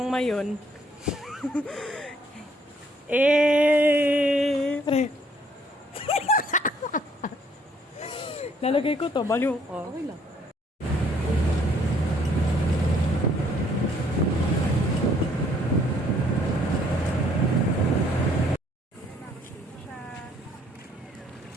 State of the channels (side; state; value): both; normal; correlation 0.64